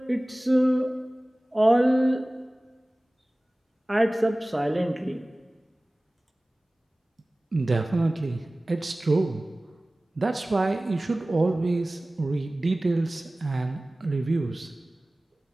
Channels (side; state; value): both; normal; correlation 0.98